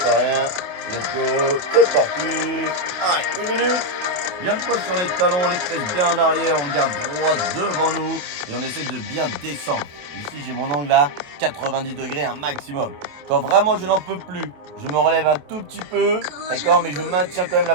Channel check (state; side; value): late; left; 27 ms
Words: rien. Let's go, c'est parti. Allez, 1 minute. Bien le poids sur les talons, les fesses bien en arrière, on regarde droit devant nous et on essaie de bien descendre. Ici, j'ai mon angle à 90 degrés, un maximum. Quand vraiment je n'en peux plus, je me relève un tout petit peu, d'accord, mais je maintiens quand même la